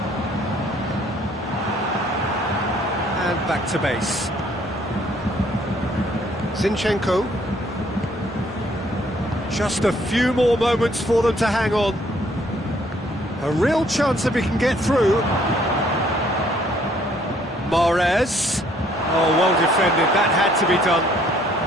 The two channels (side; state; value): both; normal; correlation 0.63